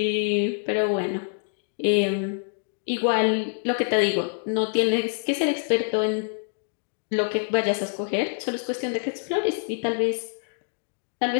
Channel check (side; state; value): right; silent; digital silence